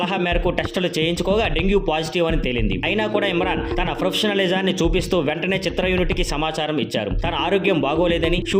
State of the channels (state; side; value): identical; both; correlation 1.00